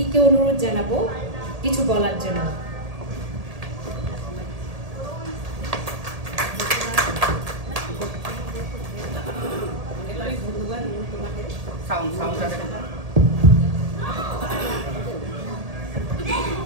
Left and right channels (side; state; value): left; late; 1.8 ms